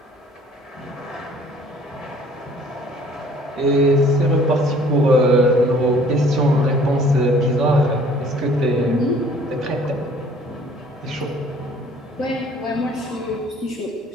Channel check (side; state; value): both; normal; correlation 0.55